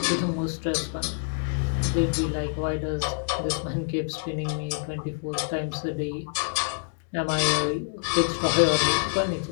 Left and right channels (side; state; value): right; silent; 60 dB below the other